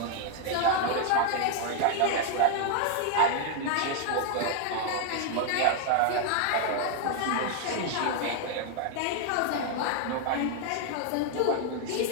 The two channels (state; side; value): different; both; correlation 0.00